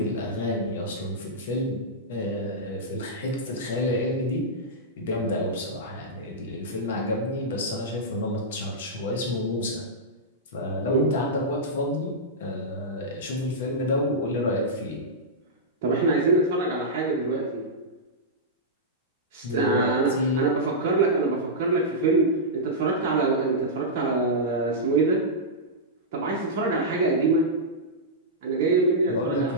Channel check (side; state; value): both; normal; correlation -0.12